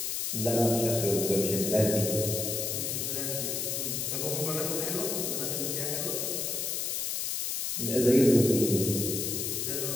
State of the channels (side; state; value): left; noise; hiss, 1 dB below the sound